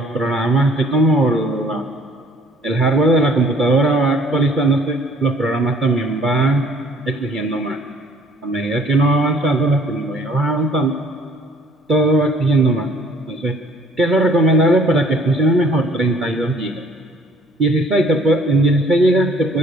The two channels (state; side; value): normal; both; correlation 0.57